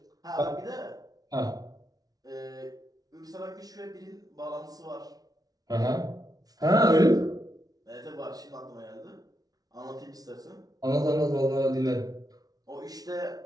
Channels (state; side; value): late; left; 0.18 ms